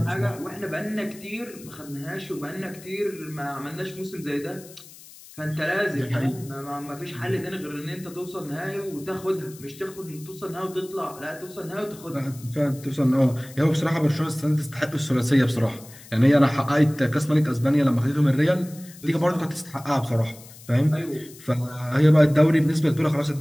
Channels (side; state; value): left; noise; hiss, 20 dB below the sound